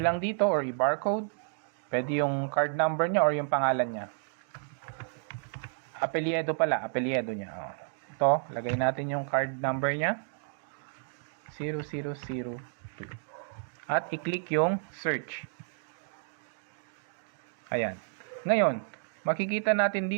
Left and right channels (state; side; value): silent; left; digital silence